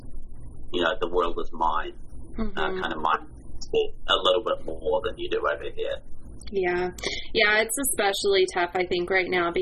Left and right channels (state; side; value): identical; both; correlation 1.00